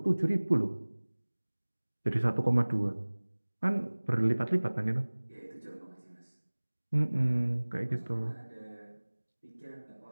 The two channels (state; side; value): inverted; both; correlation -1.00